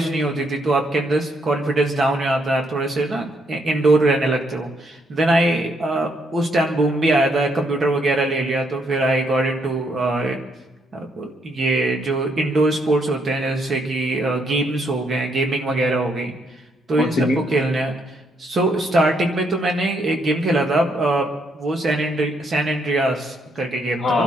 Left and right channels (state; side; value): normal; both; correlation 0.74